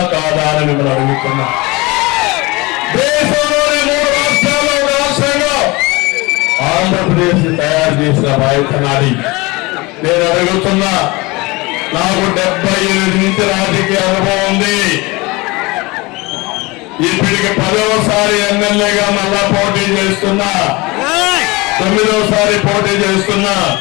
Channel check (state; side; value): quieter; right; 23.8 dB